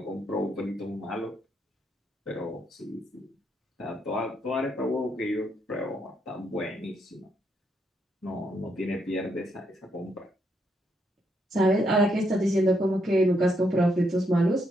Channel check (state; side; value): normal; both; correlation 0.76